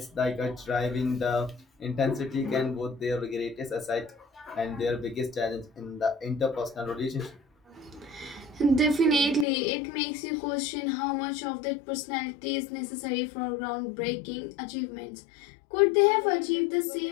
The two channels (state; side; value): drops out; right; at 9.5 s